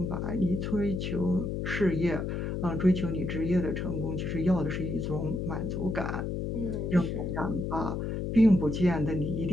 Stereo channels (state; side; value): noise; left; hum, 2 dB below the sound